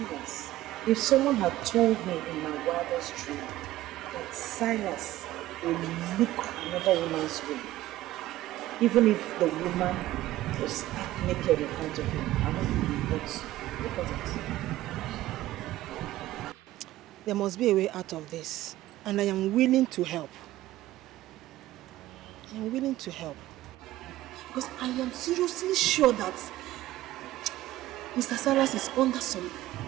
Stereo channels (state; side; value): quieter; left; 15.5 dB